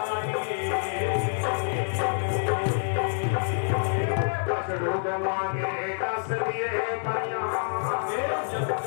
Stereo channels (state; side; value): silent; right; digital silence